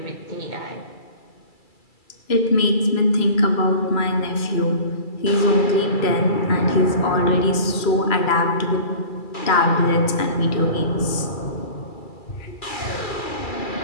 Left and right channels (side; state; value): right; late; 2.3 ms